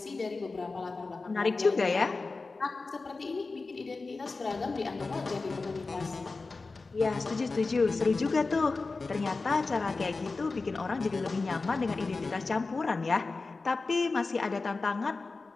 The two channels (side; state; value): right; quieter; 3.8 dB